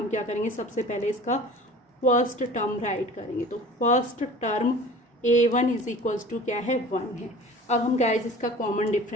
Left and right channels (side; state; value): both; normal; correlation 0.42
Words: क्या करेंगे, सबसे पहले इसका फर्स्ट टर्म राइट करेंगे। तो first term A1 is equals to क्या है, 1 है। अब हम गाइस इसका कॉमन